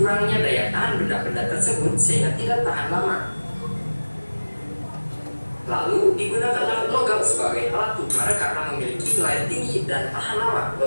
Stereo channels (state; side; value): inverted; both; correlation -1.00